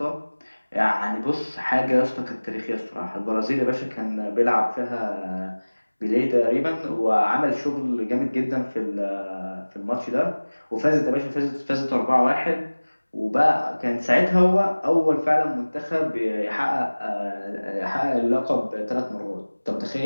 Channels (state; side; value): inverted; both; correlation -1.00